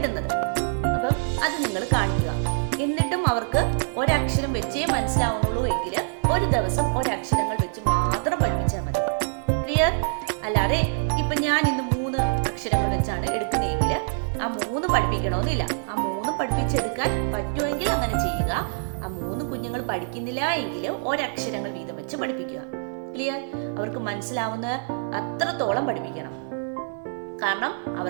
അപ്പം അത് നിങ്ങൾ കാണിക്കുക. എന്നിട്ടും അവർക്ക് ഒരക്ഷരം വെച്ചേ മനസ്സിലാവുന്നുള്ളൂ എങ്കിൽ ഒരു ദിവസം ഒരക്ഷരങ്ങൾ വെച്ച് മാത്രം പഠിപ്പിച്ചാൽ മതി. ക്ലിയർ? അല്ലാതെ ഇപ്പൊ ഞാൻ ഇന്ന് 3 അക്ഷരങ്ങൾ വെച്ചാണ് എടുക്കുന്നതെങ്കിൽ ആ 3 പഠിപ്പിക്കണമെന്നില്ല. ആ 3 പഠിപ്പിച്ചെടുക്കാൻ പറ്റുമെങ്കിൽ അങ്ങനെ ചെയ്യുക. ആ 3 കുഞ്ഞുങ്ങൾ പഠിക്കുന്നില്ല എങ്കിൽ ഒരക്ഷരങ്ങൾ വീതം വെച്ച് പഠിപ്പിക്കുക. ക്ലിയർ? അവർക്ക് മനസ്സിലാവുന്ന അത്രത്തോളം പഠിപ്പിക്കണം. കാരണം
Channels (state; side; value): silent; left; 62 dB below the other